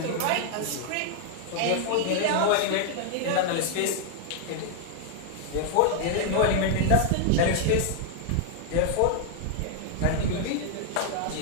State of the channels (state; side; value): different; both; correlation 0.00